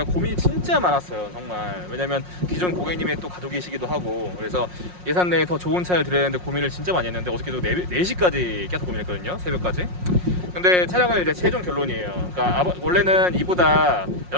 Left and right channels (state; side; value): late; left; 5.6 ms